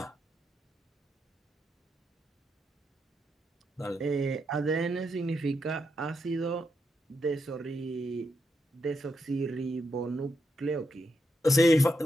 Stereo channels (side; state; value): both; normal; correlation 0.82